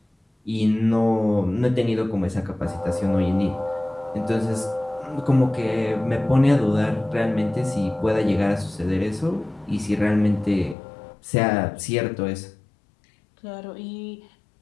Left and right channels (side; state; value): right; drops out; at 10.8 s